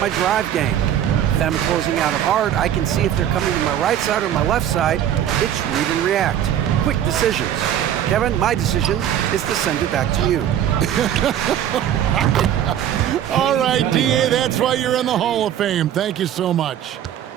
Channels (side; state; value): left; quieter; 10.6 dB